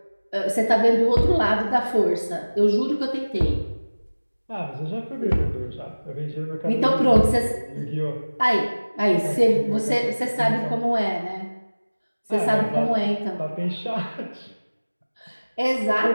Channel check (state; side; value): inverted; both; correlation -1.00